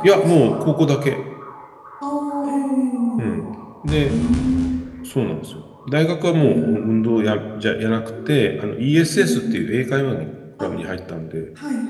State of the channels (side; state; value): both; identical; correlation 1.00